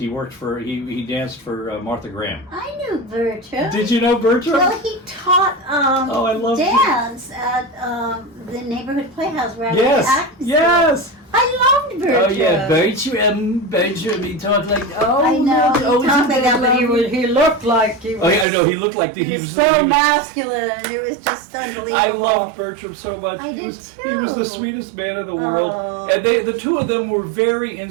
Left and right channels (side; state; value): left; drops out; at 18.4 s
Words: worked for he danced for Martha Graham. I knew Bertram. Did you know Bertram? Well, he taught I love dance at the neighborhood playhouse where I was acting. Yes. I loved Bertram. Oh yeah, Bertram. He talked like I know. He talked like that, but he looked like he was. Oh yeah, I know. He looked like he was so masculine. It was just unbelievable. I loved Bertram so much. He was the sweetest man in the world, and the two of them were very